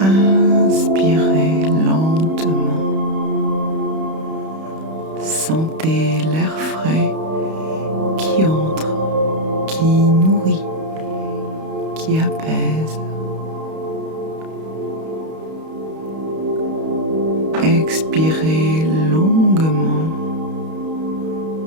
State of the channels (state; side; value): late; left; 31 ms